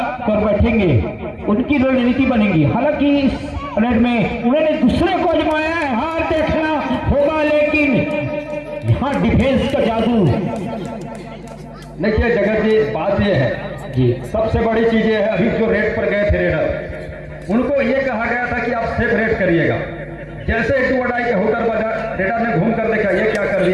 कर बैठेंगे, उनकी रणनीति बनेगी। हालांकि इस रेड में उन्होंने दूसरे को आजमाया है, हार देखना होगा, लेकिन यहाँ डिफेंस का जादू। देखिए जगत जी, बात ये है जी, सबसे बड़ी चीज ये है, अभी जो रेड पर गए थे रेडर, उनको ये कहा गया था कि आप सेफ रेड करिएगा। जैसे एक वडाई के होकर बाजार रेडर ने घूम कर देखा, ये क्या कर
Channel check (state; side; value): identical; both; correlation 1.00